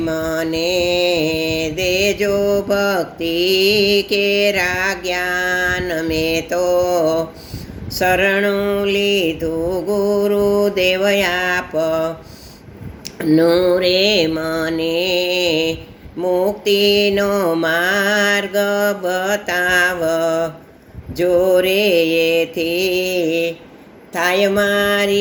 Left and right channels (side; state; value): both; identical; correlation 1.00